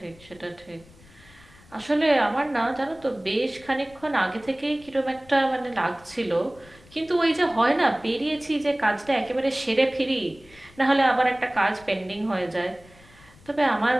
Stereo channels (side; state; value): left; noise; rumble, 25 dB below the sound